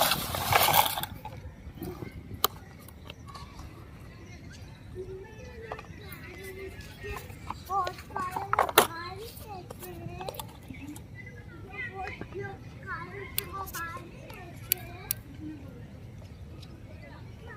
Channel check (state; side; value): identical; both; correlation 1.00